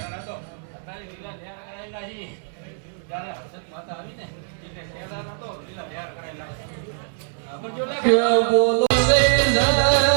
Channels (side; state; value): left; silent; 63 dB below the other